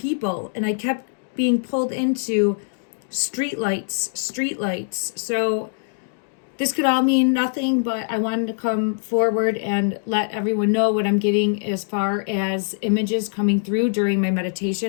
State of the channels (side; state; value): right; silent; digital silence